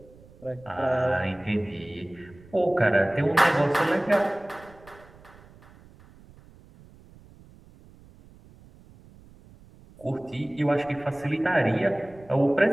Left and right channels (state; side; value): noise; right; rumble, 24 dB below the sound